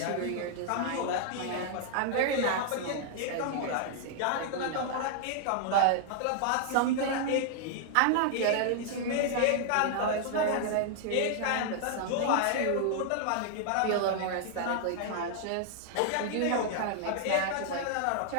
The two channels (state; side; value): different; both; correlation 0.00